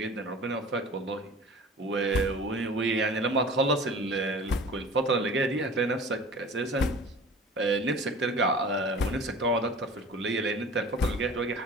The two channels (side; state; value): both; normal; correlation 0.42